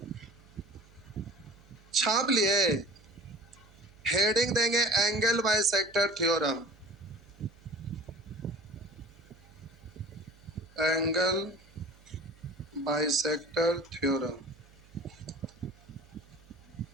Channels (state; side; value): noise; right; hum, 25 dB below the sound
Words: छाप लिए, हेडिंग देंगे angle bisector theorem, angle bisector theorem.